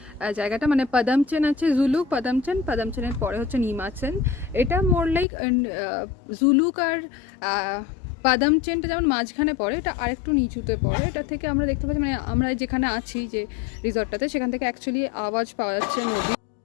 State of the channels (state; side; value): drops out; right; at 5.2 s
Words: জায়গাটা, মানে পাদামচেন আছে, জুলুক পাদামচেনের পরে হচ্ছে নিমাচেন। এটা মোর লাইক জুলুক আর পাদামচেনটা যেমন মাঝখানে পড়ে, এটা আরেকটু নিচুতে পড়ে। এটা থেকে আমরা দেখতে পাচ্ছি, মানে আমরা যেখানে আছি যে রিসর্টটাতে, সেখান থেকে অ্যাকচুয়ালি আওয়াজ পাওয়া যাচ্ছে নদী।